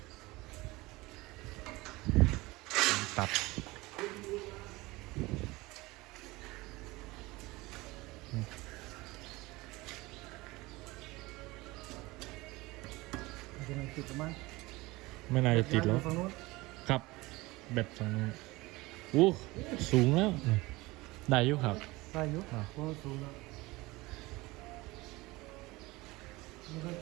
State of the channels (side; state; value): left; quieter; 21.4 dB